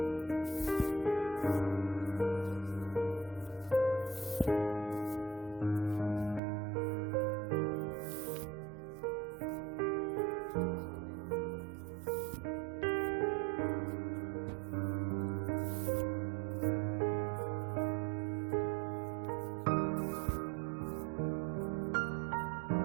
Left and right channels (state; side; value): drops out; left; at 6.4 s